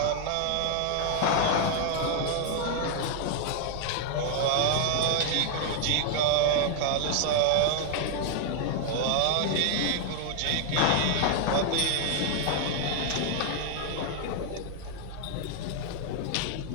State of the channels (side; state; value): both; different; correlation 0.00